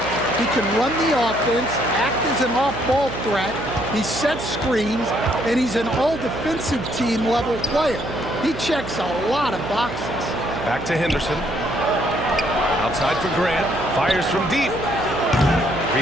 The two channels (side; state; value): right; noise; hum, 10 dB below the sound